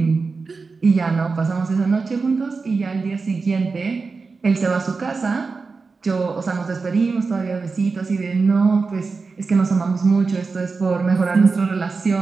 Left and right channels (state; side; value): quieter; left; 4.4 dB